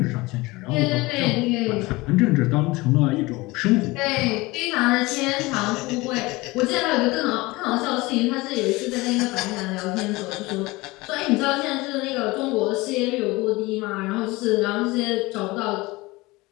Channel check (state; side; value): quieter; right; 21.9 dB